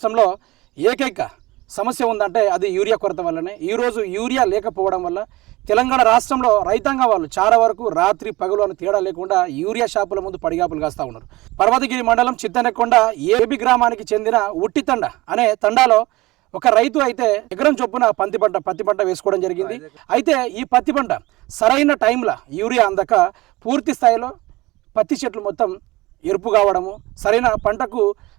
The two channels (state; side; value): quieter; left; 20.3 dB